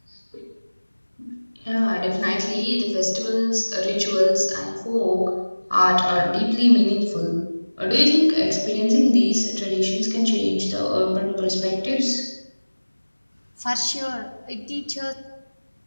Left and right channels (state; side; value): inverted; both; correlation -1.00